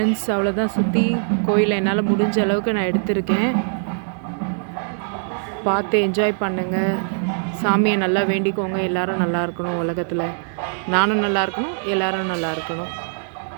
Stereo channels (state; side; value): silent; left; digital silence